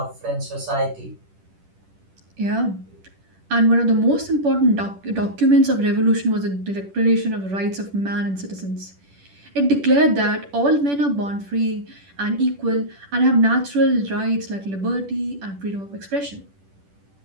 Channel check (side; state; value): left; late; 10 ms